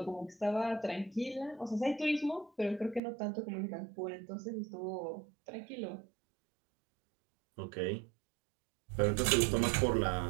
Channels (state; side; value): drops out; left; at 3.0 s